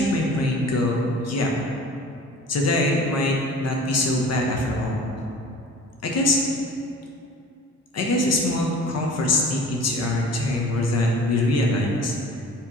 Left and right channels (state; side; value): normal; both; correlation 0.43